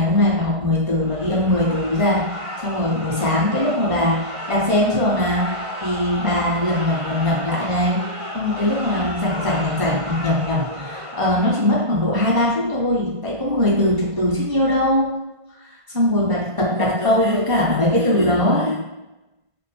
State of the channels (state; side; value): late; left; 1.5 ms